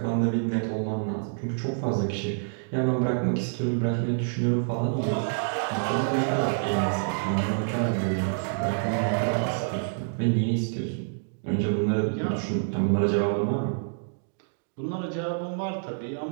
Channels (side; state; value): left; silent; digital silence